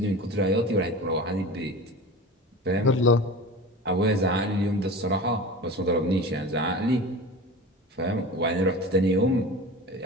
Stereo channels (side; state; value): both; normal; correlation 0.33